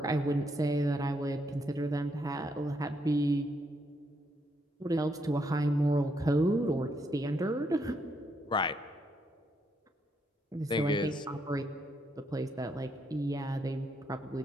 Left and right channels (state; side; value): normal; both; correlation 0.76